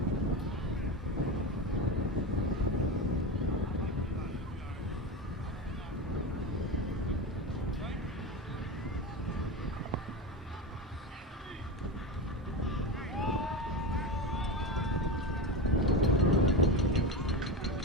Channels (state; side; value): normal; both; correlation 0.21